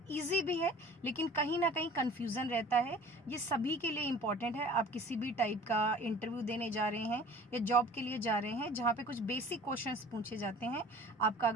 इजी भी है लेकिन कहीं ना कहीं कन्फ्यूज़न रहता है। ये सभी के लिए इम्पॉर्टेंट है। आप किसी भी टाइप का इंटरव्यू देने जा रहे हैं या जॉब के लिए जा रहे हैं जहाँ पे कुछ बेसिक क्वेश्चंस पूछे जाते हैं, आपका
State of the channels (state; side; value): normal; both; correlation 0.45